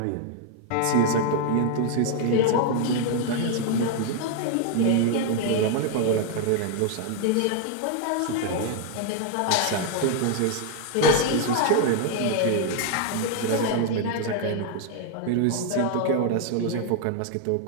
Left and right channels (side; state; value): both; different; correlation 0.00